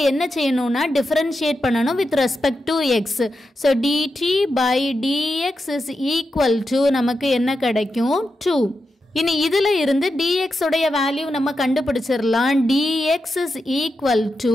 என்ன செய்யணும்னா differentiate பண்ணணும் with respect to x. So dt by dx is equal to நமக்கு என்ன கிடைக்கும் 2. இனி இதுல இருந்து dx உடைய வேல்யூ நம்ம கண்டுபிடிச்சிரலாம். dx is equal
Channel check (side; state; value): both; normal; correlation 0.88